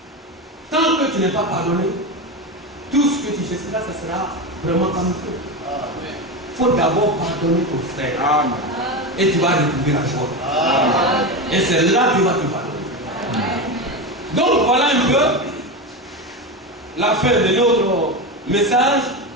Tant que tu n'es pas pardonné, tout ce que tu feras, ce sera vraiment comme il faut. Il faut d'abord pardonner ton frère. Amen. Et tu vas retrouver la joie. Amen. Et c'est là que tu vas te pardonner. Donc voilà un peu la fin de notre message.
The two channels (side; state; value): both; normal; correlation 0.18